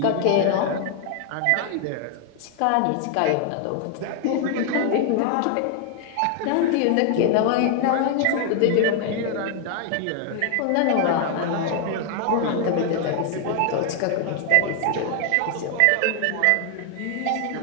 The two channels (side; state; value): both; different; correlation 0.00